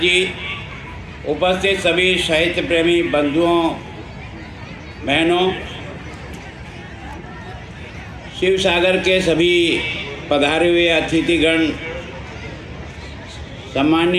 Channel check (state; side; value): identical; both; correlation 1.00